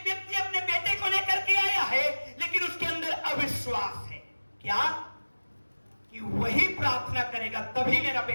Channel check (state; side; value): inverted; both; correlation -1.00